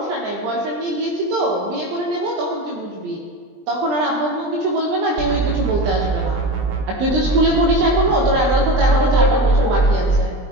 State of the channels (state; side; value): late; left; 20 ms